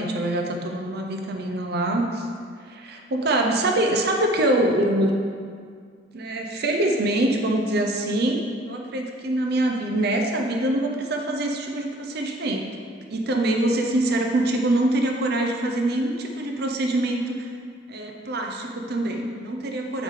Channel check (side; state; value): both; normal; correlation 0.51